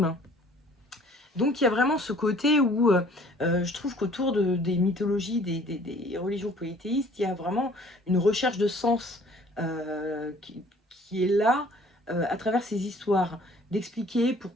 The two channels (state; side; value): normal; both; correlation 0.55